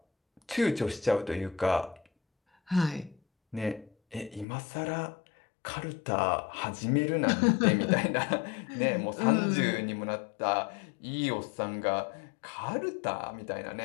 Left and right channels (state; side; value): drops out; right; at 4.5 s